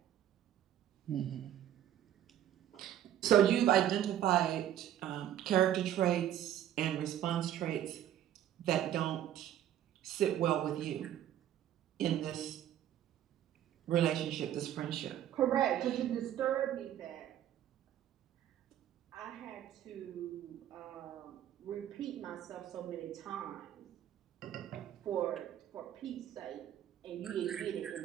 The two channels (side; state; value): left; quieter; 11.3 dB